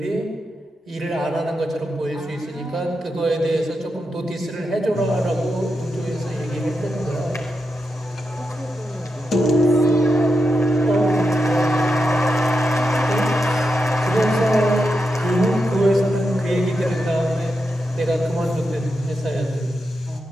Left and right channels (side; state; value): both; normal; correlation 0.87